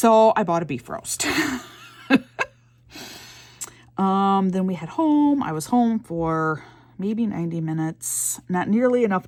I bought a beef roast. Then we head home. I was home for maybe 90 minutes, not nearly enough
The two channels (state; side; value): identical; both; correlation 1.00